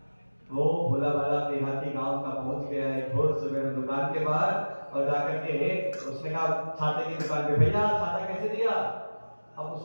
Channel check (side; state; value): both; inverted; correlation -1.00